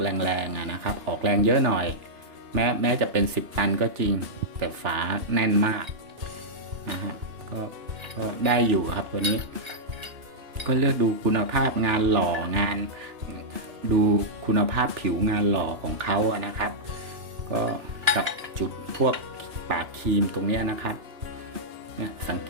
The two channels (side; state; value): left; late; 2.9 ms